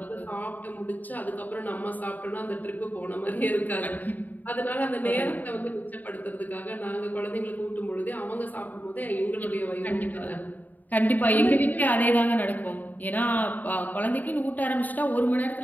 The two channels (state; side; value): late; right; 0.083 ms